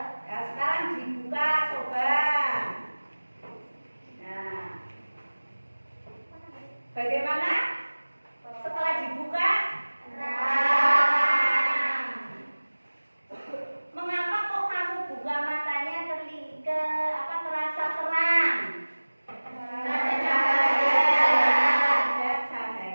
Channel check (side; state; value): both; inverted; correlation -1.00